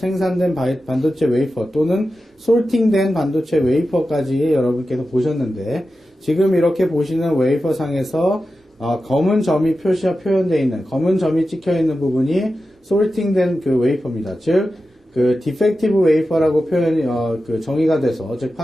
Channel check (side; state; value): both; normal; correlation 0.92